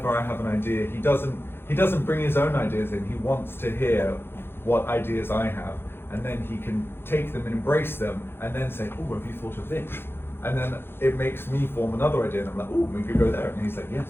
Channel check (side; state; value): right; late; 0.11 ms